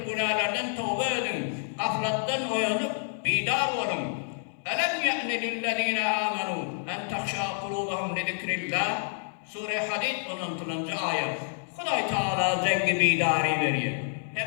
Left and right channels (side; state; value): right; silent; digital silence